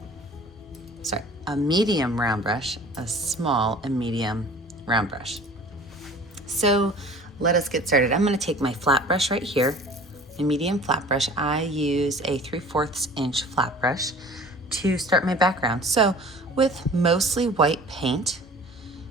a medium round brush, a small and medium round brush. So let us get started. I'm going to take my flat brush right here, my medium flat brush. I use a 3/4 inch flat brush to start my background. So with mostly white paint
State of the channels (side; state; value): both; normal; correlation 0.46